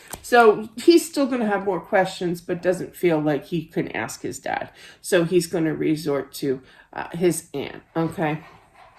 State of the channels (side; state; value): both; identical; correlation 1.00